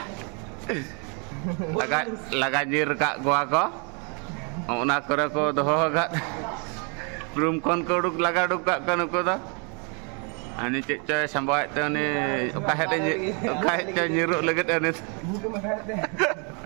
Lagajir kak gua ko. Ona kore ko doho gat. Room kon ko duk lagaduk kak kan nuku ta. Ani cek coy sampai tu ni kahet nyiruk legit ani.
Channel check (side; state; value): left; quieter; 35.9 dB